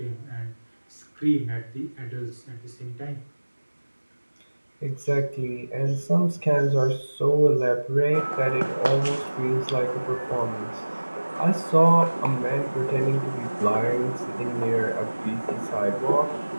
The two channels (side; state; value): both; inverted; correlation -1.00